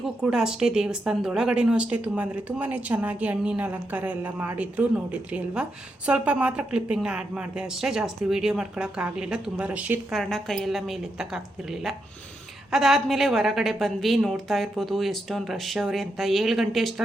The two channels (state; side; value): normal; both; correlation 0.83